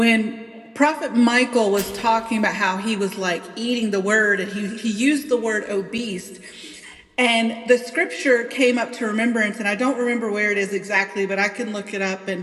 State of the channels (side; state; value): both; identical; correlation 1.00